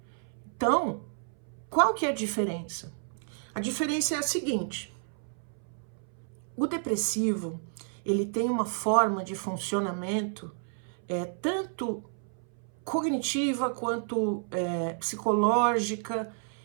Então, qual que é a diferença? A diferença é a seguinte: o depressivo, ele tem uma forma de funcionamento tanto cognitiva quanto psicológica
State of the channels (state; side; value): silent; left; 57 dB below the other